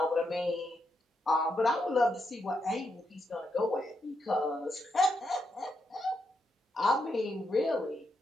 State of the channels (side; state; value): both; normal; correlation 0.82